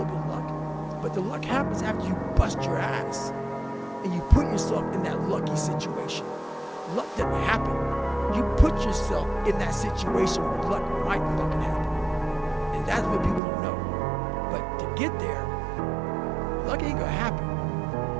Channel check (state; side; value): drops out; left; at 13.4 s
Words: bit of luck, but the luck happens after you bust your ass and you put yourself in that lucky situation. Luck doesn't happen. You put yourself in that situation where luck might fucking happen. And that's what people don't know. But to get there, luck ain't gonna happen.